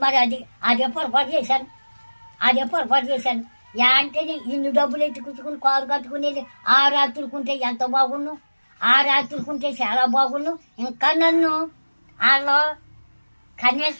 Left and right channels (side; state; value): both; inverted; correlation -1.00